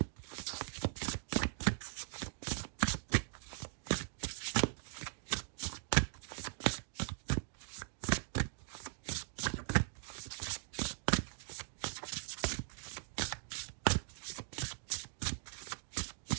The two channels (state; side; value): silent; left; digital silence